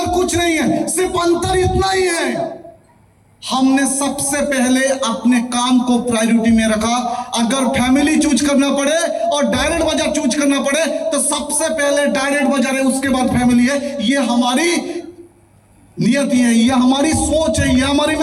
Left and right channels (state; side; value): identical; both; correlation 1.00